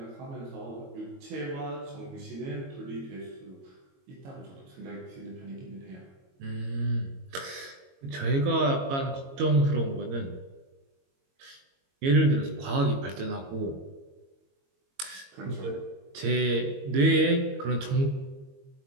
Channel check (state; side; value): late; left; 22 ms